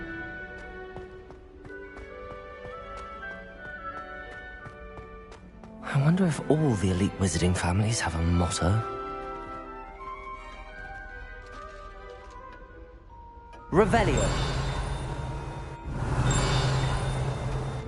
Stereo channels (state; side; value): identical; both; correlation 1.00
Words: I wonder if all the elite wizarding families have a motto. Revelio.